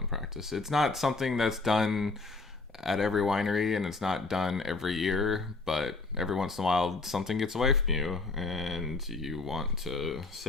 practice. It's not something that's done at every winery, and it's not done every year, but every once in a while something gets away from you and you want to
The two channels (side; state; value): right; quieter; 3.7 dB